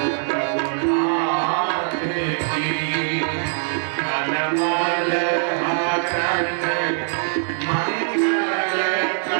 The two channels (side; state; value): left; silent; 64 dB below the other